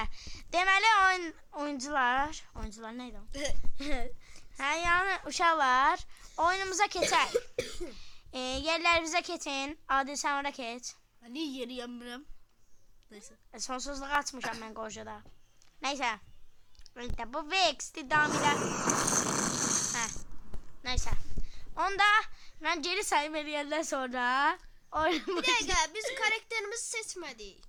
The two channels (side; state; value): both; identical; correlation 1.00